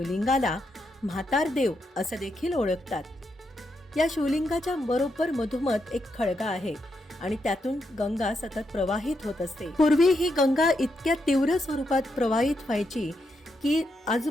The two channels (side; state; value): both; normal; correlation 0.82